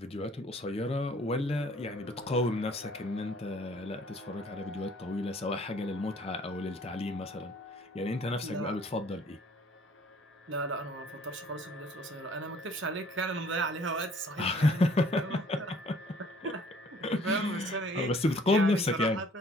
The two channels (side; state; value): both; normal; correlation 0.57